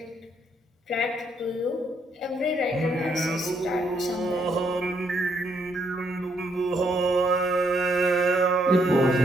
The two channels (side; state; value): both; normal; correlation 0.73